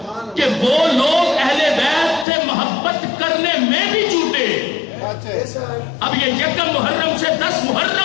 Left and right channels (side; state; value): right; drops out; at 2.2 s